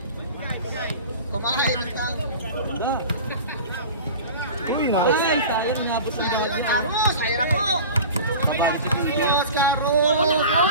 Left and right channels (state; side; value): inverted; both; correlation -0.37